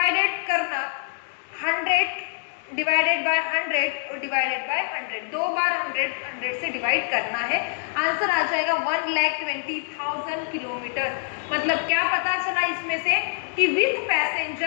करना, 100 डिवाइडेड बाय 100 और डिवाइडेड बाय 100, 2 बार 100 से डिवाइड करना है। आंसर आ जाएगा 1,20,000 किलोमीटर। मतलब क्या पता चला इसमें से कि विद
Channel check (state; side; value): silent; right; digital silence